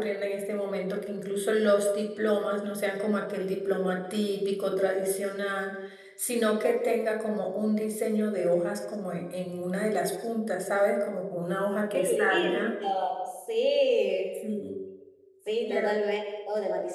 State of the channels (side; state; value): both; identical; correlation 1.00